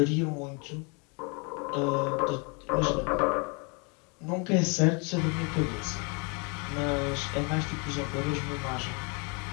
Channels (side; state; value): right; quieter; 33.3 dB